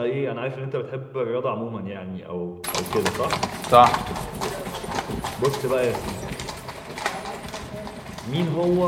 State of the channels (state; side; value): identical; both; correlation 1.00